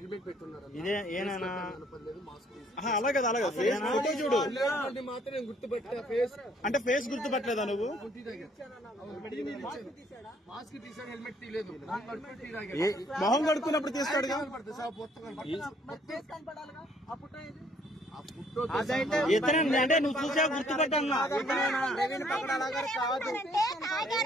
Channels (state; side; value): normal; both; correlation 0.64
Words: పెట్టున్నారు అలా కదా, అలాగే ఫోటో చూడు. మాత్రం గుర్తుపెట్టా ఫేస్ అంటే ఫేస్ గుర్తుపట్టలేదా నువ్వు? మాస్క్ తీసాడు, హెల్మెట్ తీయలేదు. మొహం కడుక్కున్నప్పుడు తీస్తాడు. అంటే నువ్వు చూసా గుర్తుపెట్టన్నా? ప్రవీణ్ పగడాల గారు కాదు,